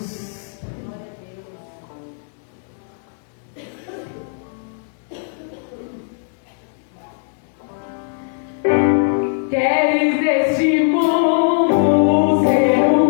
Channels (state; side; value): silent; right; digital silence